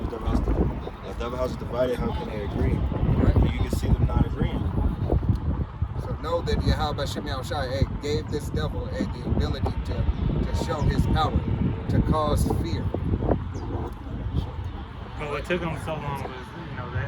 Devil house is divided. How can they agree? Right. You can see them not agreeing. So know that Yahweh Shem Yahushai gave this devil the ability to show his power, to cause fear. But what took them so long was,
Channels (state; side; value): identical; both; correlation 1.00